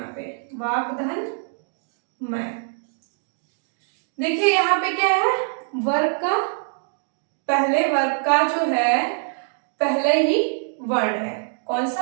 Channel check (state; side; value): silent; left; 58 dB below the other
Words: पे वाक धन मैं। देखिए यहाँ पे क्या है, वर्ग का, पहले वर्ग का जो है पहले ही वर्ण है, कौन